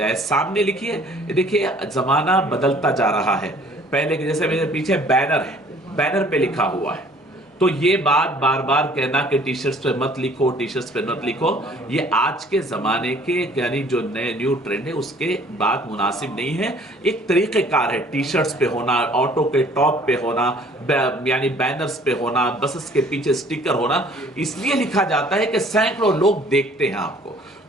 सामने लिखिए। देखिए, ज़माना बदलता जा रहा है। पहले के जैसे मेरे पीछे बैनर है, बैनर पे लिखा हुआ है, तो ये बात बार बार कहना कि टी शर्ट्स पे मत लिखो, टी शर्ट्स पे मत लिखो, ये आज के ज़माने के यानी जो नए न्यू ट्रेंड है उसके बात मुनासिब नहीं है। एक तरीक़ेकार है टी शर्ट्स पे होना, ऑटो के टॉप पे होना, यानी बैनर्स पे होना, बसेस के पीछे स्टिकर होना, इसलिए लिखा जाता है कि सैकड़ों लोग देखते हैं आपको।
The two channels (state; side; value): normal; both; correlation 0.55